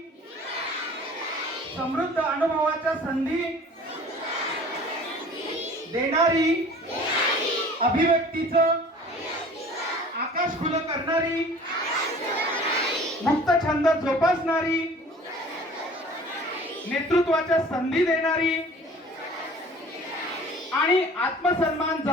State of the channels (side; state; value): both; normal; correlation 0.47